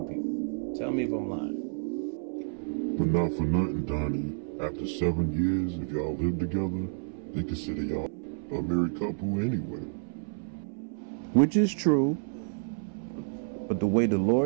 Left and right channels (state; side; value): silent; left; 58 dB below the other